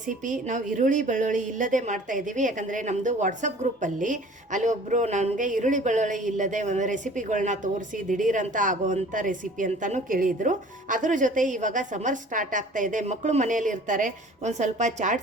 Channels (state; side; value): normal; both; correlation 0.48